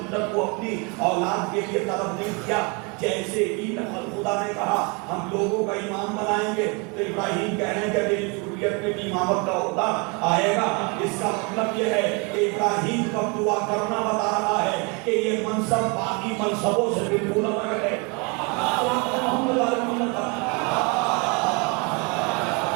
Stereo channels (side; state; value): left; quieter; 31.3 dB